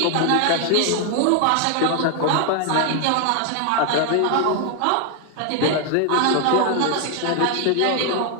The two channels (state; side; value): different; both; correlation 0.00